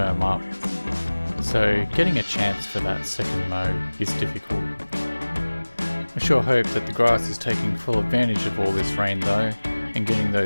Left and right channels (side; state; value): both; inverted; correlation -1.00